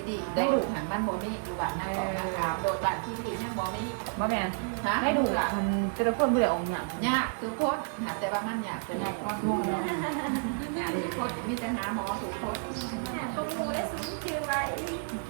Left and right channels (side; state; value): left; silent; 57 dB below the other